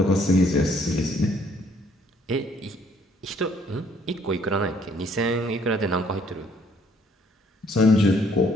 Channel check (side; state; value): both; normal; correlation 0.63